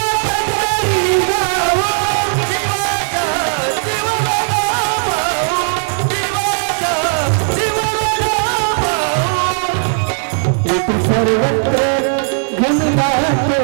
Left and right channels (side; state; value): left; silent; digital silence